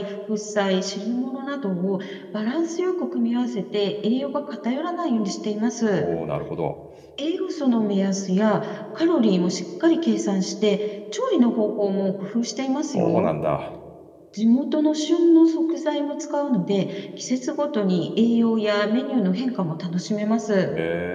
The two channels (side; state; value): both; identical; correlation 1.00